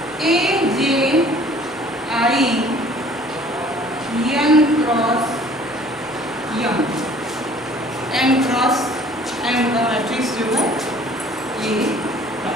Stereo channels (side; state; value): both; normal; correlation 0.53